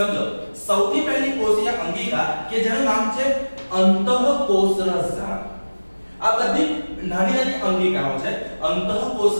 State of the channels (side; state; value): both; inverted; correlation -1.00